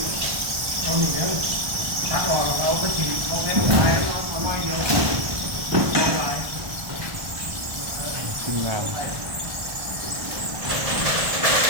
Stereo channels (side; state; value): left; late; 1.2 ms